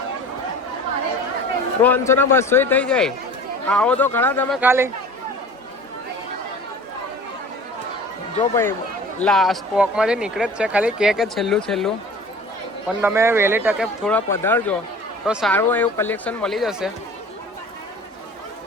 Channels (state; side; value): normal; both; correlation 0.42